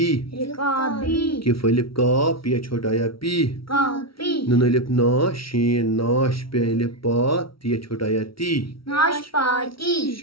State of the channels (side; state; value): right; late; 0.75 ms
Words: رکابی کف الف کا پیا چھوٹا یا پی کاپی نون الف نا شین ناش پہ الف پا تیا چھوٹا یا تی ناشپاتی